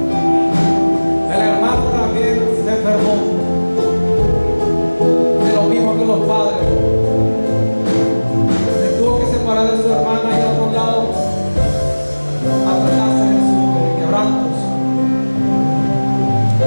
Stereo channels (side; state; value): both; inverted; correlation -1.00